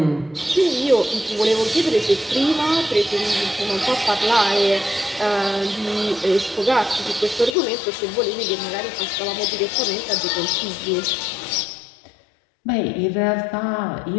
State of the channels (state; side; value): drops out; right; at 7.6 s